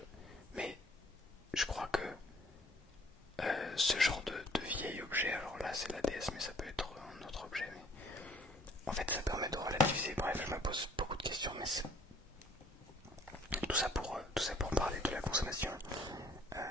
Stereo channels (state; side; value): normal; both; correlation 0.57